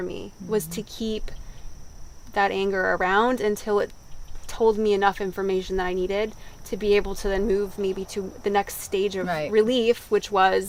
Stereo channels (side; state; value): both; identical; correlation 1.00